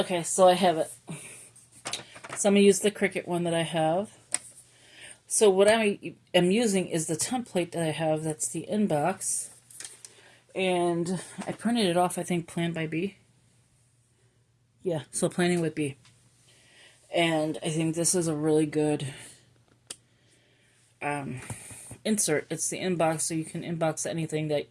so I have it. So I'm going to use the Cricut one that I have. So what I am using is the template that I have. That's the inbox. And I printed it off, I think, Plan by B. Yeah, so Planning with B. And I think this is a really good insert. It's the inbox, so you can inbox anything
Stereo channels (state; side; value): identical; both; correlation 1.00